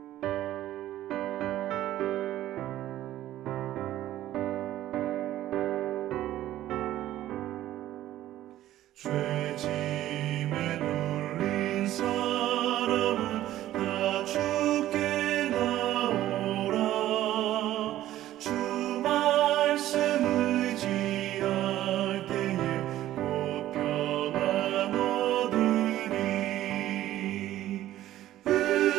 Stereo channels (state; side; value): quieter; left; 13.7 dB